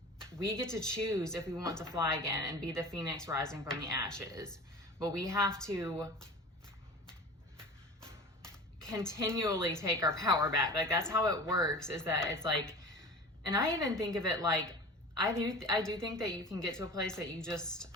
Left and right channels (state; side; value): normal; both; correlation 0.37